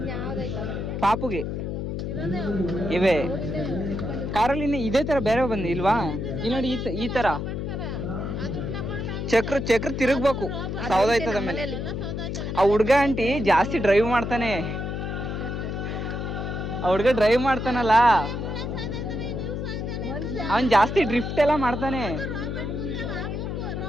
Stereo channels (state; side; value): noise; left; hum, 3 dB below the sound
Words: ಪಾಪುಗೆ ಇವೆ ಕಾರಲ್ಲಿ ಇದೇ ತರ ಬೇರೆ ಬಂದು ಇಲ್ವಾ? ಇಲ್ಲಿ ನೋಡಿ ಈ ತರ ಚಕ್ರ ತಿರುಗ್ಬೇಕು, ಸೌದಾಯ್ತದ ಮೇಲೆ. ಆ ಹುಡ್ಗ ಆಂಟಿ ಜಾಸ್ತಿ ಡ್ರೈವ್ ಮಾಡ್ತಾನೆ. ಆ ಹುಡ್ಗ ಡ್ರೈವ್ ಮಾಡ್ತಾನಲ್ಲ, ಅವನ್ ಜಾಸ್ತಿ ಡ್ರಿಫ್ಟ್ ಎಲ್ಲ ಮಾಡ್ತಾನೆ.